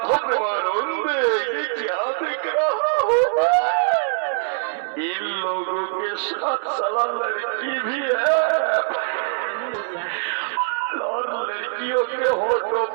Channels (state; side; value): silent; left; digital silence